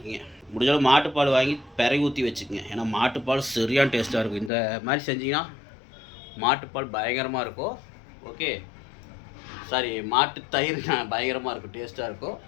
முடிஞ்சளவு மாட்டுப்பால் வாங்கி பிறகு ஊற்றி வச்சுக்கோங்க. ஏன்னா மாட்டுப்பால் சரியான டேஸ்ட்டாக இருக்கும். இந்த மாதிரி செஞ்சிங்கன்னா மாட்டுப்பால் பயங்கரமாக இருக்கும். ஓகே, சாரி, மாட்டு தயிர் பயங்கரமாக இருக்கும், டேஸ்ட்டாக இருக்கும்.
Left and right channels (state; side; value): drops out; right; at 4.5 s